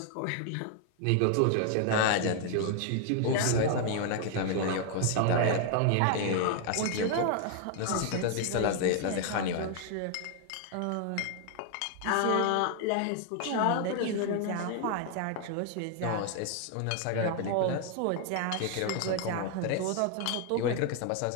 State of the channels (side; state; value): both; different; correlation 0.00